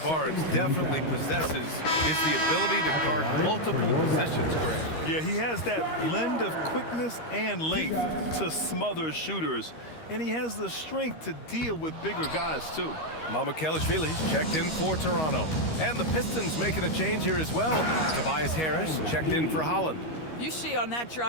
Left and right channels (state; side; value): late; right; 13 ms